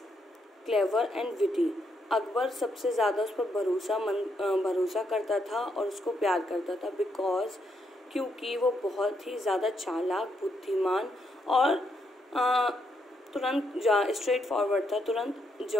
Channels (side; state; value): both; normal; correlation 0.77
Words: clever and witty. Akbar सबसे ज़्यादा उस पर भरोसा करता था और उसको प्यार करता था क्योंकि वो बहुत ही ज़्यादा चालाक, बुद्धिमान और तुरंत स्ट्रेट फॉरवर्ड था, तुरंत